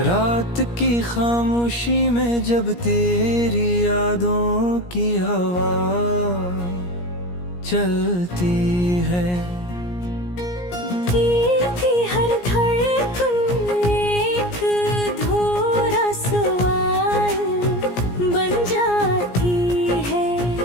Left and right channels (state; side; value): late; right; 17 ms